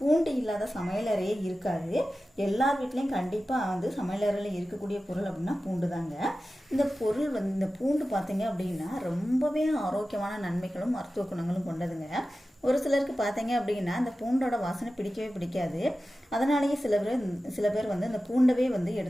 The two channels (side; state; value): both; normal; correlation 0.94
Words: இல்லாத சமையலறையே இருக்காது. எல்லார் வீட்லேயும் கண்டிப்பாக சமையலறையில் இருக்கக்கூடிய பொருள் அப்படின்னா பூண்டு தாங்க. இந்த பொருள் இந்த பூண்டு பார்த்தீங்க அப்படின்னா ரொம்பவே ஆரோக்கியமான நன்மைகளும் மருத்துவ குணங்களும் கொண்டதுங்க. ஒரு சிலருக்கு பார்த்தீங்க அப்படின்னா இந்த பூண்டோட வாசனை பிடிக்கவே பிடிக்காது. அதனாலேயே சில பேர் இந்த பூண்டவே